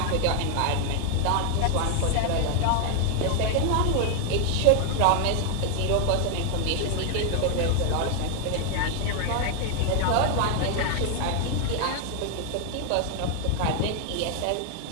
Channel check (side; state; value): both; different; correlation 0.00